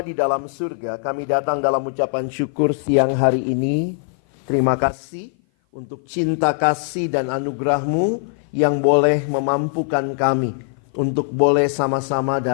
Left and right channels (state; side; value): silent; right; 56 dB below the other